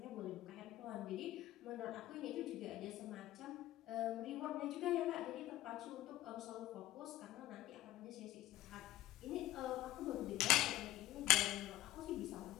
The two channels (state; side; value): quieter; right; 15.2 dB